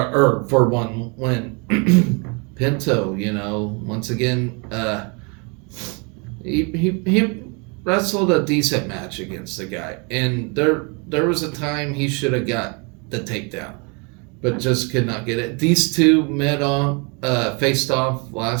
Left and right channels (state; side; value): quieter; left; 32.7 dB